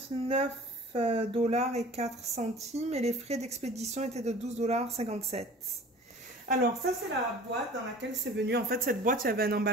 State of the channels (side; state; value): both; normal; correlation 0.44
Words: $ et 4 centimes. Et les frais d'expédition étaient de 12,57 $. Alors, ça, c'est la boîte dans laquelle c'est venu. En fait, cette boîte, il y avait un